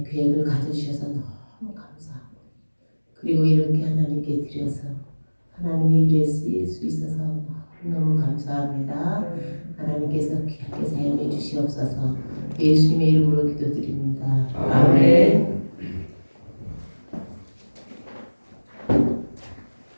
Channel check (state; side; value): inverted; both; correlation -1.00